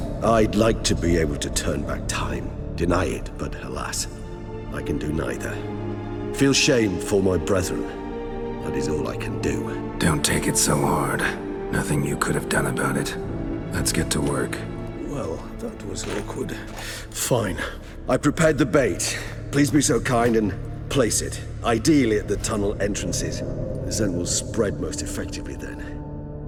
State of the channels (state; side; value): identical; both; correlation 1.00